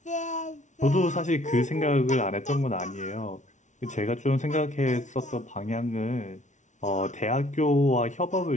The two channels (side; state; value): right; late; 0.36 ms